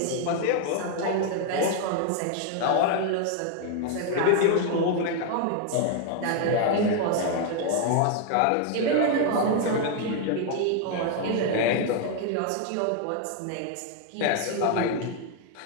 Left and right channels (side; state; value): both; different; correlation 0.00